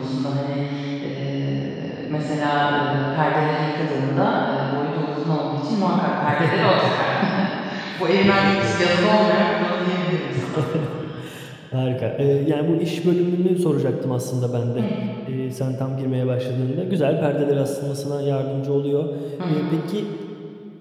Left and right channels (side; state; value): both; identical; correlation 1.00